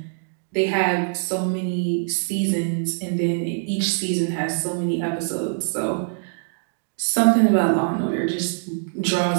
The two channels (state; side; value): silent; left; digital silence